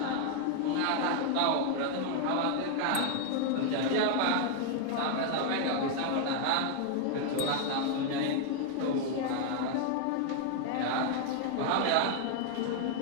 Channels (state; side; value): different; both; correlation 0.00